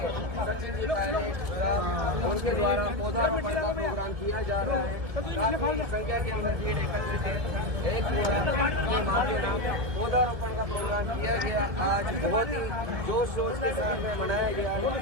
सचिन जी पहले उनके द्वारा पौधारोपण का प्रोग्राम किया जा रहा है। काफी संख्या के अंदर भीड़ एकत्रित है। एक माँ के नाम पौधारोपण का प्रोग्राम किया गया, आज बहुत ही जोश शोर के साथ में मनाया गया है।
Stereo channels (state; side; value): late; left; 1.7 ms